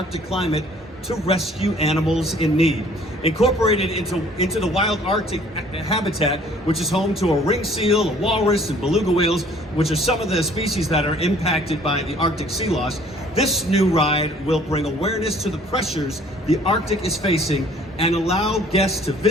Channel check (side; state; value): both; normal; correlation 0.56